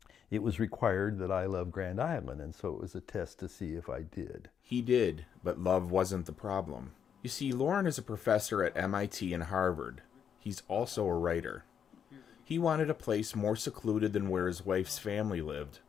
it was required that I love Grand Island, and so it was a test to see if I did. He did, but love wasn't the problem. You see, Loren is a professor at MIT and Harvard. He's also a writer. He wanted a place more secluded than where his wife's family lived,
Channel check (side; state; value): right; quieter; 8.0 dB